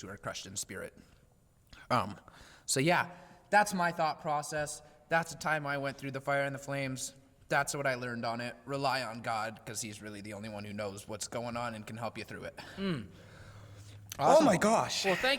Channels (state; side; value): identical; both; correlation 1.00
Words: who are crushed in spirit. So yeah, that's my thought process. That's the time I went through the fire and the flames. That's what I learned on it. Rely on God, because he's really the only one who knows what's going on and can help you through it. Awesome. Oh my gosh. Well,